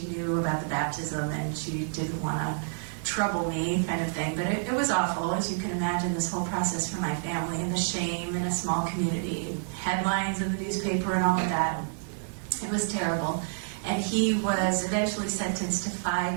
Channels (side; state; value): left; silent; 59 dB below the other